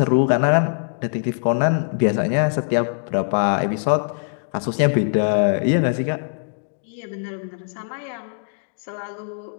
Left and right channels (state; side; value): silent; right; digital silence